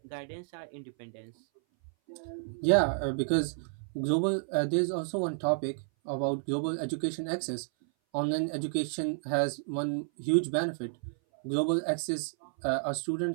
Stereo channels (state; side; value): silent; left; 57 dB below the other